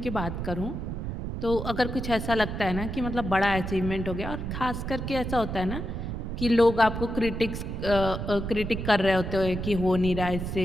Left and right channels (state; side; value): noise; right; rumble, 5 dB below the sound